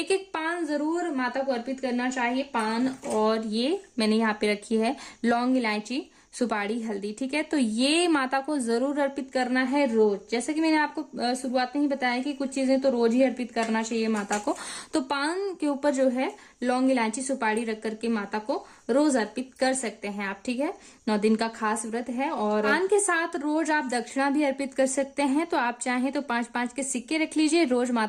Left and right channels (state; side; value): identical; both; correlation 1.00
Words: एक पान जरूर माता को अर्पित करना चाहिए, पान। और ये मैंने यहाँ पे रखी है लौंग, इलायची, सुपारी, हल्दी। ठीक है, तो ये माता को जरूर अर्पित करना है रोज। जैसे कि मैंने आपको शुरुआत में ही बताया कि कुछ चीजें तो रोज ही अर्पित करना चाहिए माता को। तो पान के ऊपर जो है लौंग, इलायची, सुपारी रख करके माता को रोज अर्पित कर सकते हैं आप। ठीक है, 9 दिन का खास व्रत है। और पान के साथ रोज आप दक्षिणा भी अर्पित कर सकते हैं। तो आप चाहें तो 5-5 के सिक्के रख लीजिए, रोज